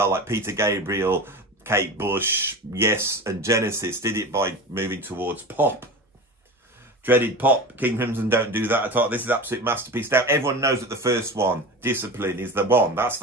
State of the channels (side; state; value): both; normal; correlation 0.30